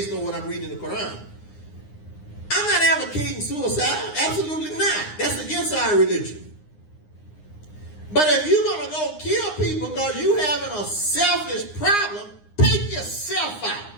on what I'm reading in the Quran. I'm not advocating suicide. Absolutely not. That's against our religion. But if you're going to go kill people because you're having a selfish problem, take yourself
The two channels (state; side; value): late; right; 9.7 ms